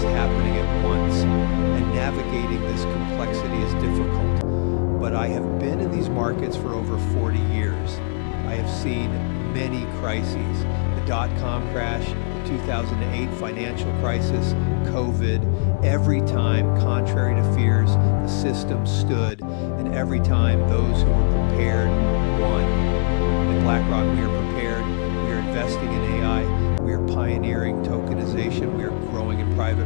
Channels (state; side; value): silent; right; digital silence